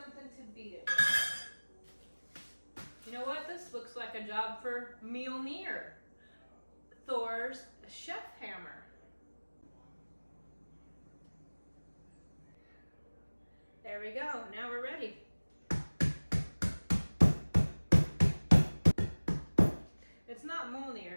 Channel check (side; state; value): both; inverted; correlation -1.00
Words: like a job for Mjolnir, Thor's chef hammer. There we go, now we're ready. It's not